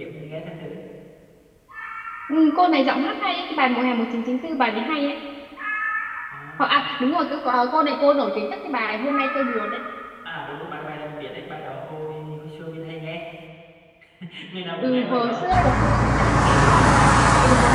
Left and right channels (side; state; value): both; identical; correlation 1.00